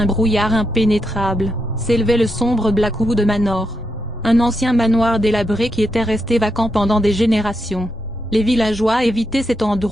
brouillard impénétrable, s'élevait le sombre Blackwood Manor. Un ancien manoir délabré qui était resté vacant pendant des générations. Les villageois évitaient cet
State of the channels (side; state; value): both; normal; correlation 0.83